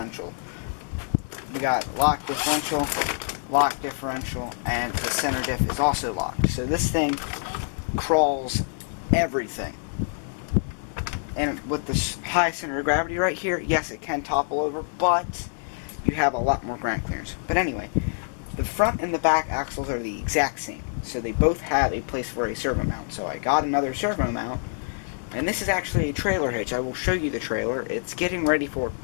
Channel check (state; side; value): silent; right; digital silence